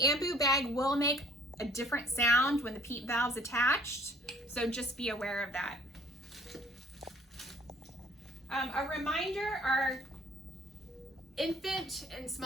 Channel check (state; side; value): normal; both; correlation 0.56